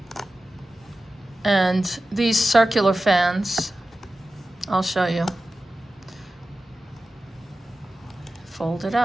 And these circular fans, I'll show you. Fold it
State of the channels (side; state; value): both; normal; correlation 0.94